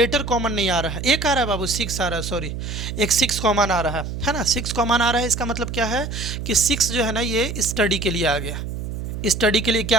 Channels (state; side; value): noise; right; hum, 6 dB below the sound